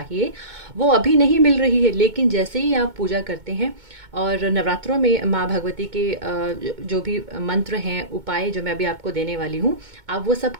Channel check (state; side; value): late; left; 2.2 ms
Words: वो अभी नहीं मिल रही है, लेकिन जैसे ही आप पूजा करते हैं और नवरात्रों में माँ भगवती के जो भी मंत्र हैं, उपाय जो मैं अभी आपको देने वाली हूँ, आप वो सब